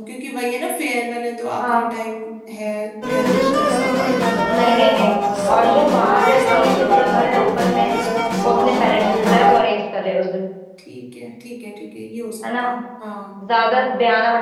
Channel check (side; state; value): both; identical; correlation 1.00